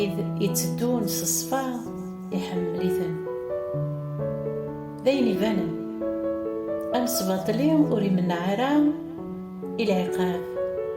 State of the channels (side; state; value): both; identical; correlation 1.00